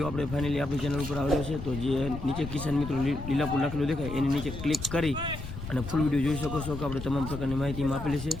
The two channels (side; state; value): left; noise; rumble, 9 dB below the sound